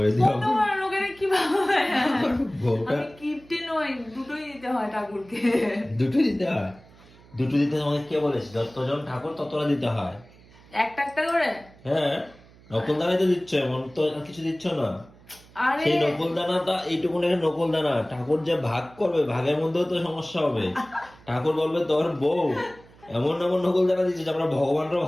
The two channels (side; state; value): right; noise; hum, 25 dB below the sound